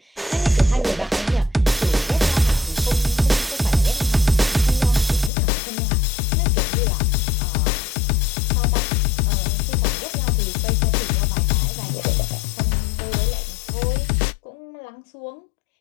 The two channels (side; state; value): right; drops out; at 5.3 s